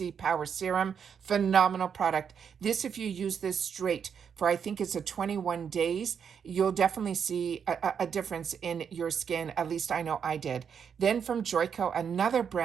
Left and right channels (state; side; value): quieter; left; 7.2 dB